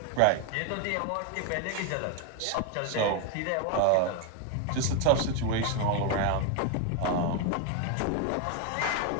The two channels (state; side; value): different; both; correlation 0.01